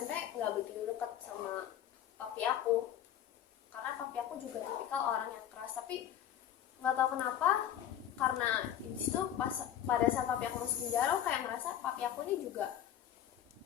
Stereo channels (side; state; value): right; quieter; 10.8 dB